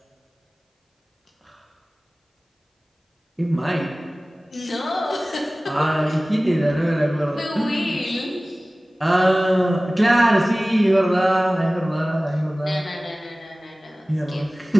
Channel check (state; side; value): normal; both; correlation 0.98